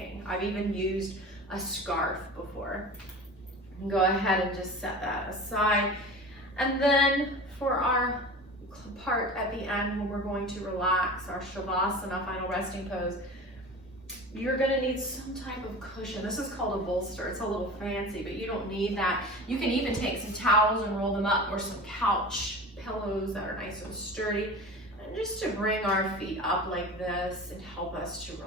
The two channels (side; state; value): both; normal; correlation 0.34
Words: I've even used a scarf before. Go ahead and just set that aside. And then for our part at the end when we're going to relax, our Shavasana, final resting pose, you're going to need some type of cushion. This is called a bolster. It's a little fancy, but you don't need that. You can even take some towels and roll them up, or some couch pillows that are nice and sturdy, and just to bring our feet up like this and help us to